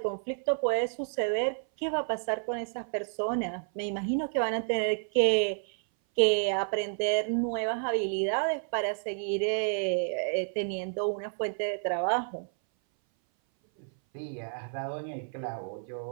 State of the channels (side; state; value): left; silent; 58 dB below the other